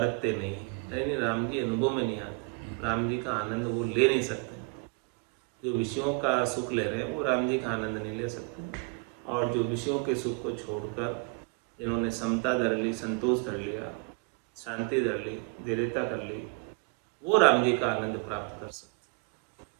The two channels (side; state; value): left; quieter; 32.4 dB